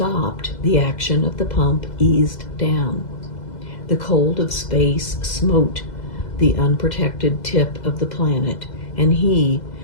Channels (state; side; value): late; right; 2.0 ms